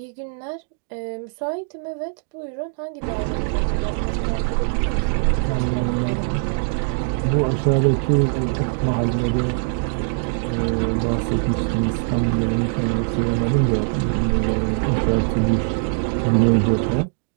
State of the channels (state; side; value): silent; left; digital silence